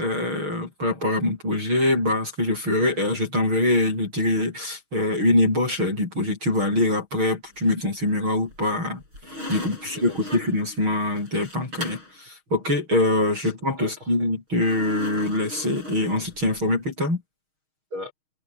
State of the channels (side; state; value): left; late; 6.4 ms